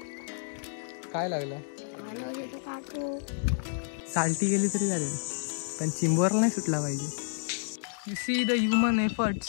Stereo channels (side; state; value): right; silent; digital silence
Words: काय लागला? साल्टी गेली तरी चालेल, पण चिंबोरला नाही सुटला पाहिजे. You see the human